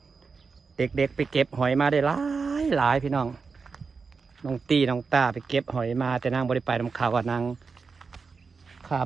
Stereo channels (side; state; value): left; quieter; 4.9 dB